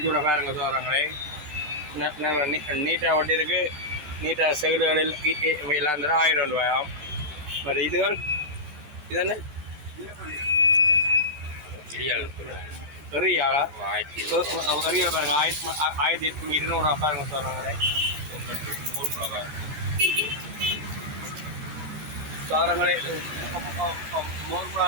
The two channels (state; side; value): late; left; 13 ms